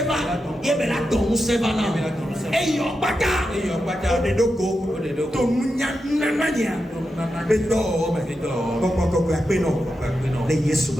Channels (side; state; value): both; normal; correlation 0.88